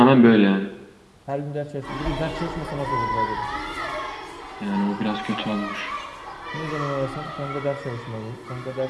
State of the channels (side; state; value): both; identical; correlation 1.00